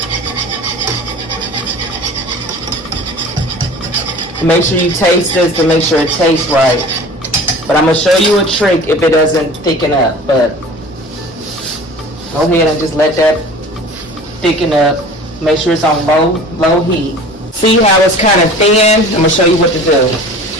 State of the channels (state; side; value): normal; both; correlation 0.42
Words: Make sure you taste this to make sure it tastes right. But I'm going to show you a trick if it doesn't thicken up. But go ahead and just let that thicken up. Make sure it's on low heat. See how it's kind of thin? I'm going to show you what to do.